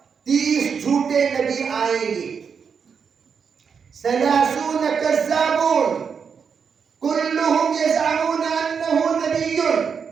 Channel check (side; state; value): left; quieter; 6.4 dB